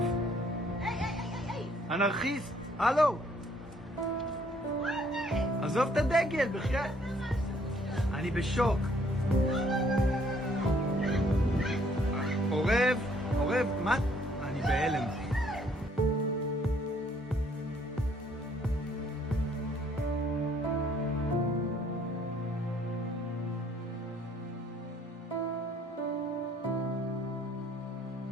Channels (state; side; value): normal; both; correlation 0.64